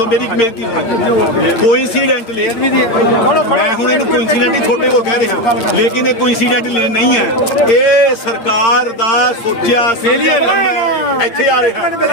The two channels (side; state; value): right; late; 8.8 ms